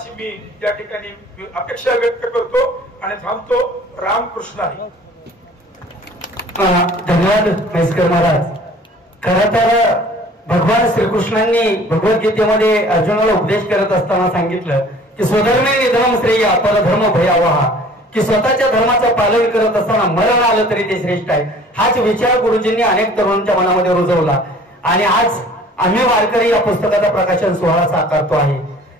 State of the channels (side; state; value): both; normal; correlation 0.50